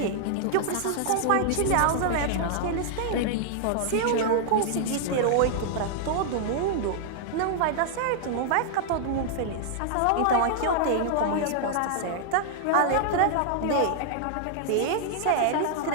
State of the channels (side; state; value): both; different; correlation -0.01